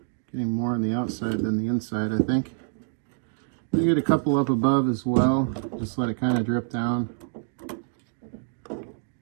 Getting more on the outside than the inside, I think. You get a couple up above as well, just let it kind of drip down.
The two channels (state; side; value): silent; left; digital silence